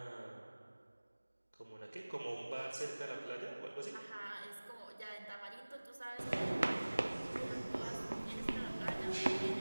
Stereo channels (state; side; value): inverted; both; correlation -1.00